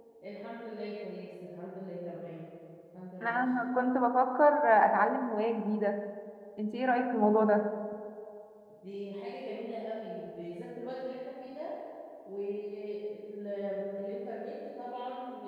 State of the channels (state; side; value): identical; both; correlation 1.00